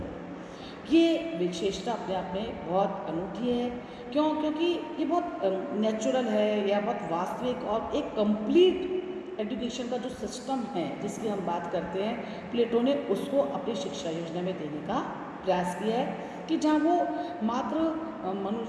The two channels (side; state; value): both; identical; correlation 1.00